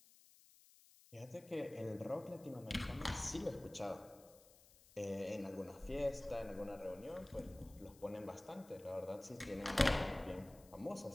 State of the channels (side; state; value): left; noise; hiss, 24 dB below the sound